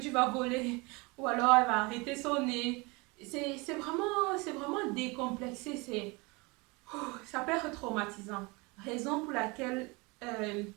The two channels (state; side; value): quieter; left; 26.7 dB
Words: vas voler, ou alors elle va arrêter son nez. C'est vraiment décomplexé, ça peut être traumatisant. Raison pour laquelle,